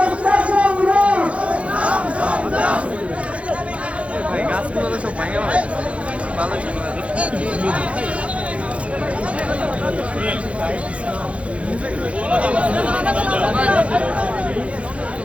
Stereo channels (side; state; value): left; late; 0.063 ms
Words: গাছগুলো সব ভাঙে ভালো ছিল।